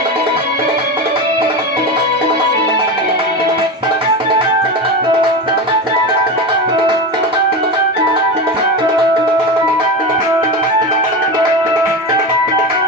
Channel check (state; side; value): normal; both; correlation 0.21